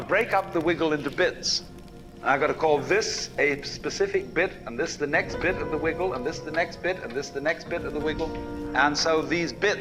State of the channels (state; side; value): identical; both; correlation 1.00